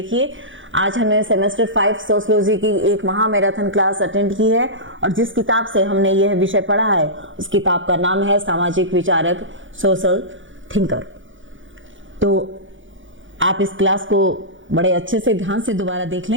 आज हमने सेमेस्टर 5 सोशियोलॉजी की एक महा मैराथन क्लास अटेंड की है और जिस किताब से हमने यह विषय पढ़ा है उस किताब का नाम है सामाजिक विचारक, सोशल थिंकर। तो आप इस क्लास को बड़े अच्छे से ध्यान से दोबारा देख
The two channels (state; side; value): late; left; 0.56 ms